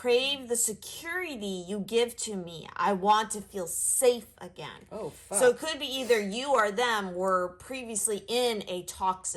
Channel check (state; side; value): identical; both; correlation 1.00